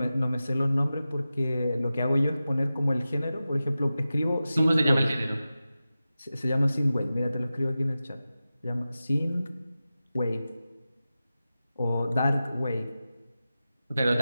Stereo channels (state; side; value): inverted; both; correlation -0.94